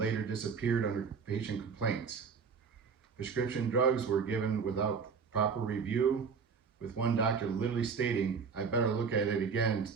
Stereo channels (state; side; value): quieter; left; 5.7 dB